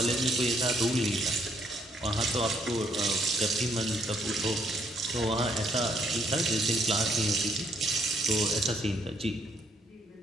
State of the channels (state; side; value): normal; both; correlation 0.71